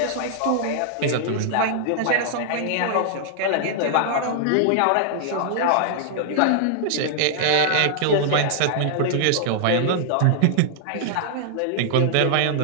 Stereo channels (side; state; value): both; different; correlation -0.01